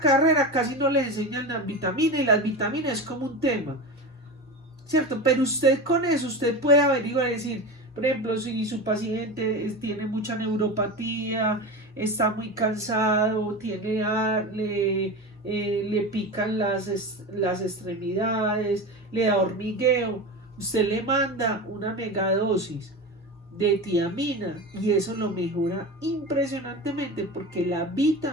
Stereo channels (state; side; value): normal; both; correlation 0.26